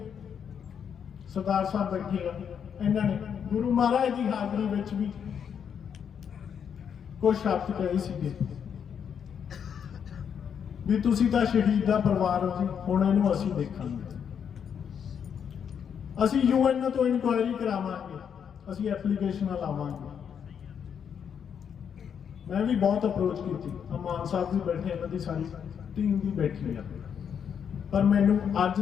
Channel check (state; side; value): quieter; right; 7.7 dB